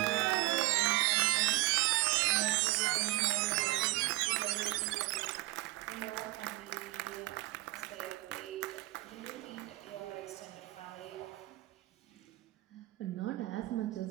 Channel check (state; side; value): quieter; left; 20.6 dB